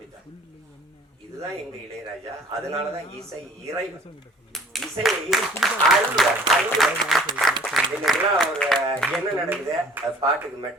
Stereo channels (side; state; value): both; normal; correlation 0.54